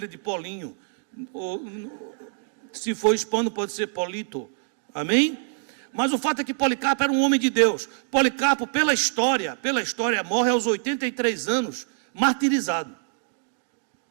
de Polinho, ou, se for hispano pode ser Polito, amém? Mas o fato é que Policarpo era um homem de Deus. Policarpo, pela história, morre aos 83 anos, martirizado.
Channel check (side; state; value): left; silent; digital silence